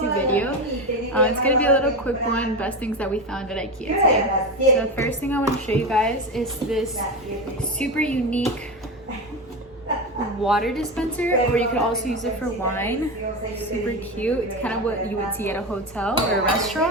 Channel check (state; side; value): normal; both; correlation 0.19